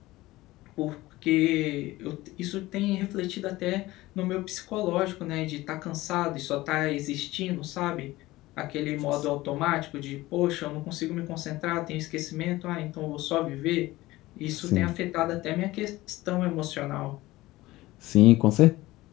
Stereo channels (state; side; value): quieter; right; 18.3 dB